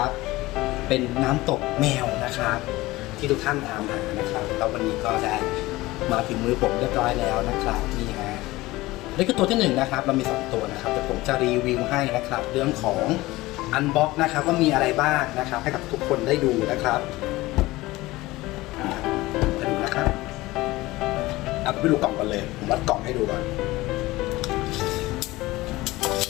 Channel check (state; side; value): quieter; right; 19.2 dB